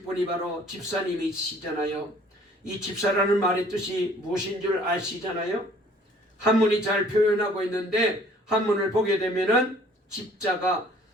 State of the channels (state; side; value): normal; both; correlation 0.56